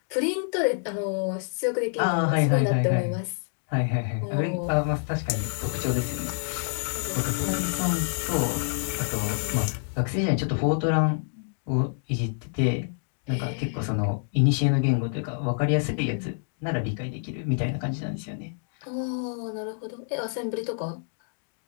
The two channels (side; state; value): right; silent; digital silence